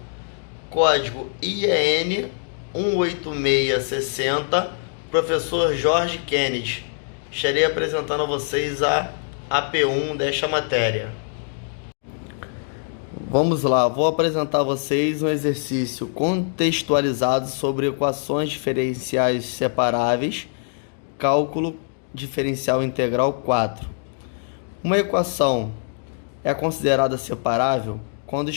código IEN 18660, professor Jorge Kennedy. Estarei apresentando a vocês a AP1 desta matéria. Vamos lá, vou apresentar a vocês um exercício contextualizado sobre equações diferenciais separáveis, cálculo diferencial integral 4. Uma equação é considerada separável quando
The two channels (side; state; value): right; silent; digital silence